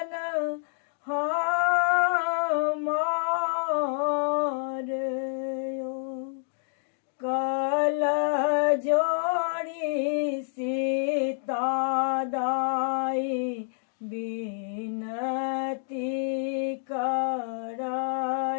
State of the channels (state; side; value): silent; right; digital silence